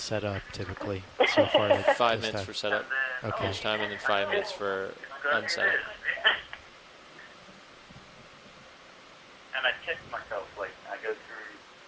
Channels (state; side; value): identical; both; correlation 1.00